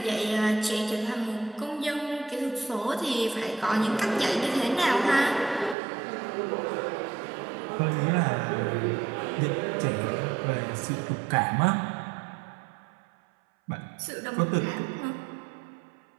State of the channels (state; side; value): drops out; left; at 5.8 s